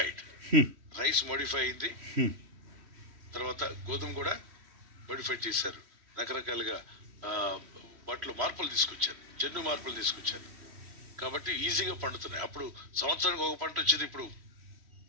రైస్ మోడిఫై అయింది, తర్వాత గోధుమ కూడా మోడిఫై చేశారు. రకరకాలుగా వాటిలో మార్పులు తీసుకొచ్చారు, జన్యు మార్పులు తీసుకొచ్చారు. కాబట్టి ఈజీగా పండుతున్నాయి. అప్పుడు సంవత్సరానికి ఒక పంట వచ్చేది, ఇప్పుడు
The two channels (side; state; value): left; late; 3.1 ms